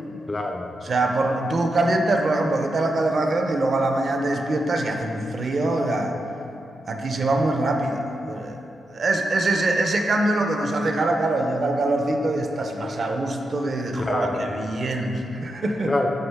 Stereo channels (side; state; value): both; normal; correlation 0.86